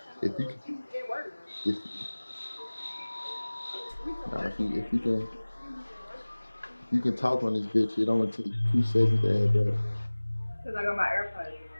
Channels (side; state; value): both; inverted; correlation -1.00